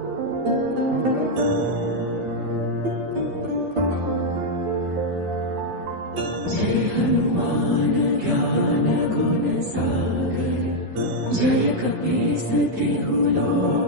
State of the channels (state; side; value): late; left; 12 ms